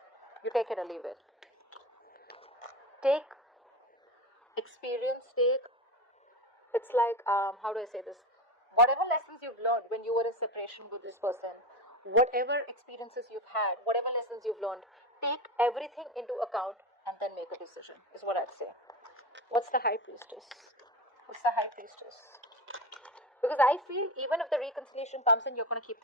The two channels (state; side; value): normal; both; correlation 0.22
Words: You take it or leave it. Take experience, it's like, how do I say this? Whatever lessons you've learned when you were in separation with this person, whatever experiences you've had, whatever lessons you've learned, take everything into account and then make a decision, is what I'd say. What's the High Priestess? What's the High Priestess? Because I feel even if the reconciliation comes in, you're going to keep